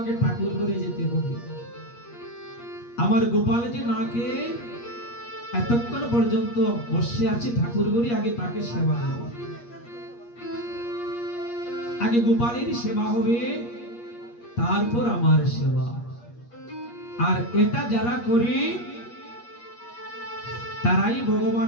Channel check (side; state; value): right; late; 8.4 ms